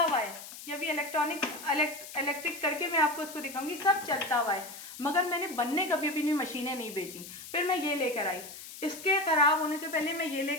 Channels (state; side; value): noise; left; hiss, 13 dB below the sound